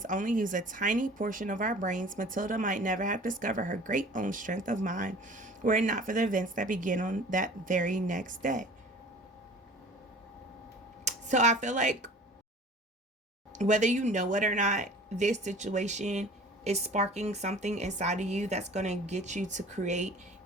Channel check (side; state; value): both; normal; correlation 0.45